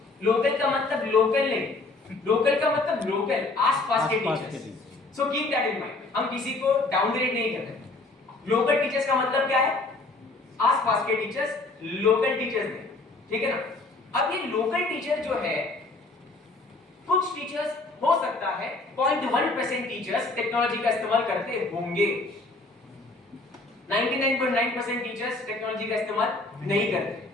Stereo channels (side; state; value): right; quieter; 3.3 dB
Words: लोकल का मतलब लोकल नहीं, लोकल का मतलब लोकल, आसपास के teachers. So keep that in mind. हम किसी को डाउनग्रेड नहीं कर रहे। लोकल टीचर्स का मतलब क्या है? आसपास के टीचर्स, लोकल टीचर्स नहीं, ठीक है ना? अब ये लोकल टीचर जो है, कुछ टीचर्स हो सकता है 0.1% टीचर्स टेक्नोलॉजी का इस्तेमाल करते होंगे, 99.9% टीचर्स टेक्नोलॉजी का इस्तेमाल नहीं करते।